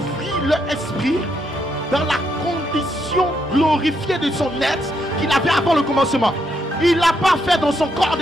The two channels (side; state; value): both; normal; correlation 0.77